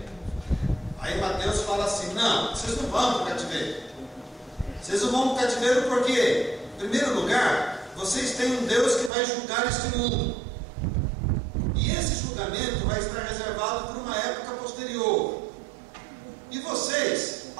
Aí Mateus fala assim: não, vocês não vão para o cativeiro. Vocês não vão para o cativeiro porque, em primeiro lugar, vocês têm um Deus que vai julgar este mundo. E esse julgamento vai estar reservado por uma época posterior. E vocês,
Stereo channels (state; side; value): drops out; left; at 9.1 s